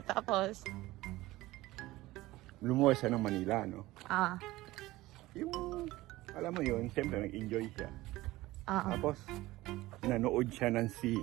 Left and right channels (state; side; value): quieter; left; 18.1 dB